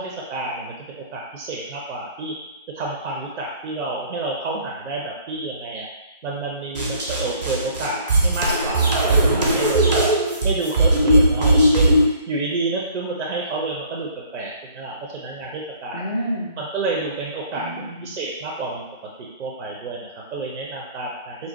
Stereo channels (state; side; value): inverted; both; correlation -0.56